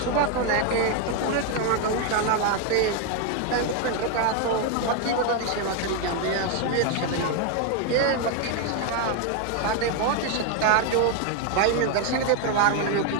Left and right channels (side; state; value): both; different; correlation 0.01